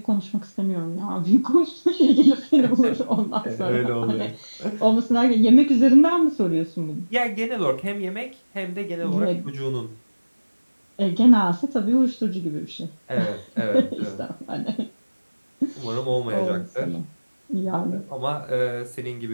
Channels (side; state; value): both; inverted; correlation -1.00